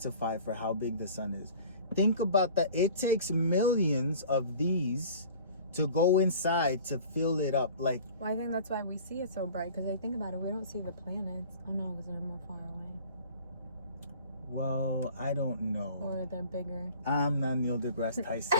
for how big the sun is. Think about that. It takes millions of these to go inside to fill it up. Like, well, I think that's why we see it so bright, because I think about it, we don't see the planets. Oh no, because they're more far away. well, I don't know. Or they're bigger. I'm not Neil deGrasse Tyson.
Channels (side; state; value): both; inverted; correlation -0.45